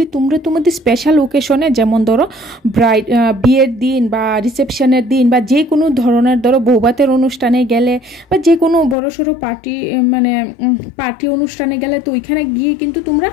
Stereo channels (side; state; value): right; drops out; at 9.0 s